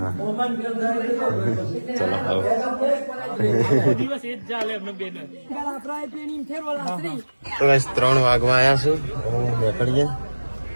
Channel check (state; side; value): inverted; both; correlation -1.00